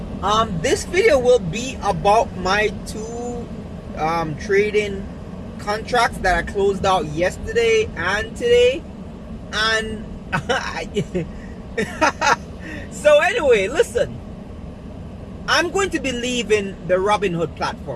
This video will be about my two trading contracts that I closed out yesterday and today. And so anyway, listen, I'm going to be leaving the Robinhood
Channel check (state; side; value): identical; both; correlation 1.00